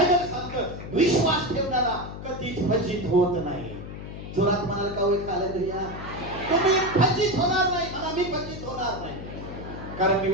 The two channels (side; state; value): left; noise; hum, 10 dB below the sound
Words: सांगतं विश्वास ठेवणारा कधीच फजित होत नाही. जोरात म्हणाल का होय? हालेलुया. तुम्ही फजित होणार नाही. म्हणा मी फजित होणार नाही, कारण मी